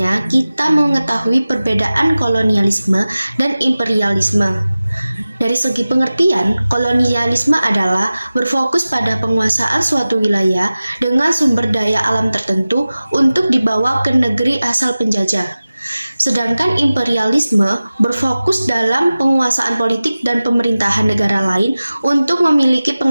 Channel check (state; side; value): inverted; both; correlation -0.96